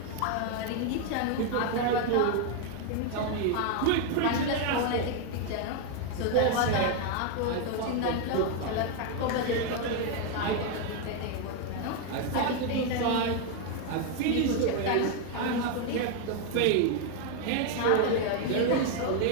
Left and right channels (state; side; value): different; both; correlation 0.01